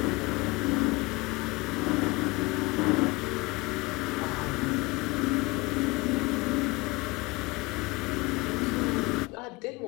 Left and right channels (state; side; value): quieter; right; 23.7 dB